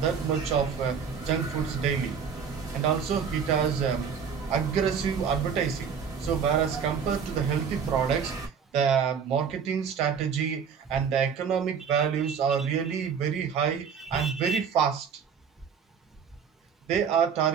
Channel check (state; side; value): quieter; left; 6.8 dB